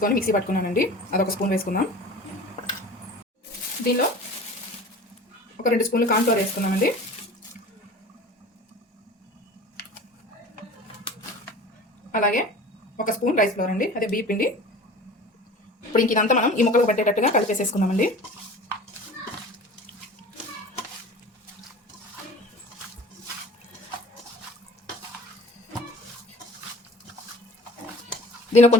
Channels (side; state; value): both; normal; correlation 0.40